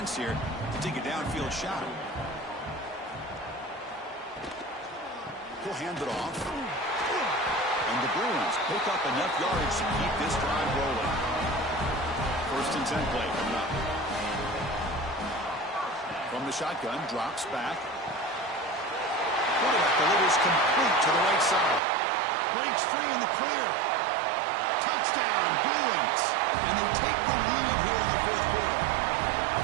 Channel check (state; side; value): drops out; left; at 21.8 s